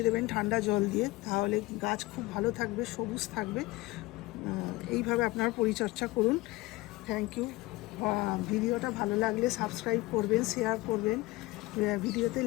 দেবেন ঠান্ডা জল দিয়ে, তাহলে গাছ খুব ভালো থাকবে, সবুজ থাকবে। এইভাবে আপনারা পরিচর্যা করুন। Thank you. ভিডিওটা ভালো লাগলে সাবস্ক্রাইব করবেন, শেয়ার করবেন, ভিডিওতে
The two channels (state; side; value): quieter; right; 20.4 dB